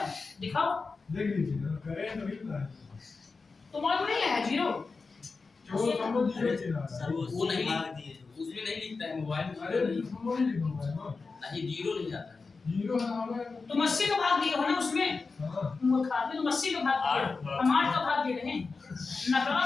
दिखाओ, देख लीजिए ना, करें तो नहीं ना। तुम्हारे नहीं है 0। जो समझ जीरो चला सर वो नहीं दिए उसमें नहीं लिखता है मोबाइल में। अरे समझ नहीं लिखा है ना, नहीं जीरो नहीं आता है। जीरो है हमारे। तुम 80 का भाग दिए हो ना उसमें। हां तुम खाते तुम 80 का भाग दिए हो, हम 8 का भाग दे रहे हैं। नकल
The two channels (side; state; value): right; quieter; 4.3 dB